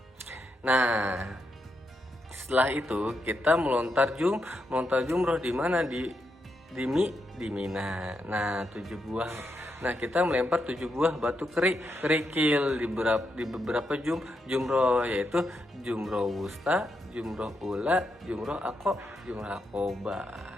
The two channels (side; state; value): both; normal; correlation 0.82